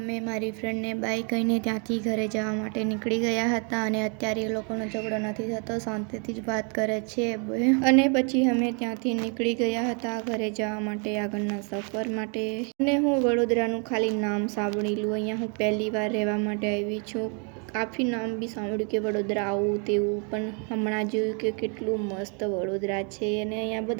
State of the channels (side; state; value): left; quieter; 37.3 dB